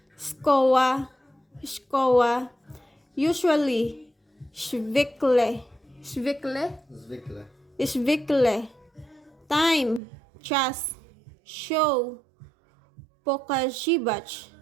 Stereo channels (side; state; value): left; drops out; at 10.0 s